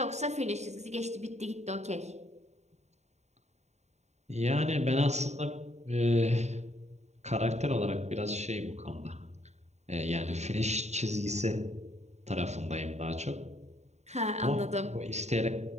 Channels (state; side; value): late; left; 0.32 ms